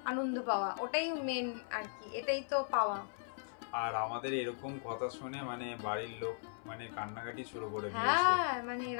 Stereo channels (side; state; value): right; silent; 53 dB below the other